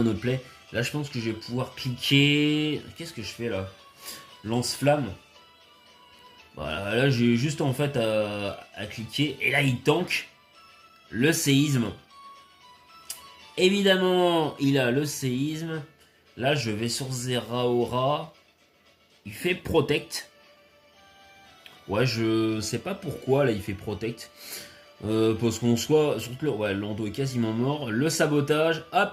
autre play. Là, je pense que je vais pouvoir cliquer. Qu'est-ce que je fais là? Lance-flamme. Voilà, là, j'ai juste en fait à cliquer. Et là, il tank le séisme. Évidemment, il a le séisme. Là, je vais sur Zeraora. Il fait Protect. Ouais, je sais pas pourquoi, là, il fait Protect. Parce qu'on soit... Surtout, ouais, Lando est quasiment mort. Le sabotage,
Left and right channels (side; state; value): both; identical; correlation 1.00